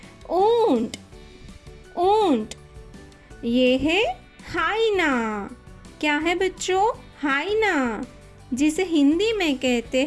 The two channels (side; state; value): both; identical; correlation 1.00